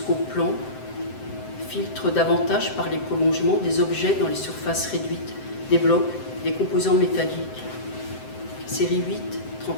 plan, filtre davantage par les prolongements des objets dans les surfaces réduites, des blocs, des composants métalliques. Série 8-31.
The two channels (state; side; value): late; right; 7.7 ms